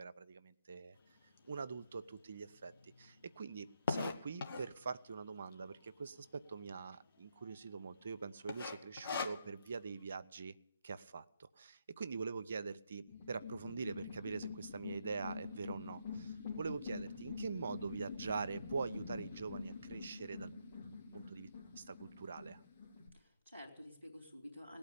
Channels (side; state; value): both; inverted; correlation -0.79